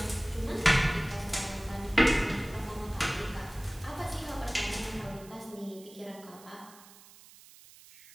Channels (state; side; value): noise; right; hiss, 21 dB below the sound